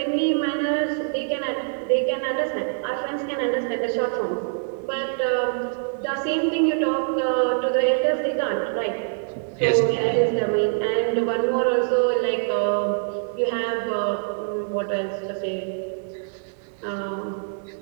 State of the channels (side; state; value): left; silent; digital silence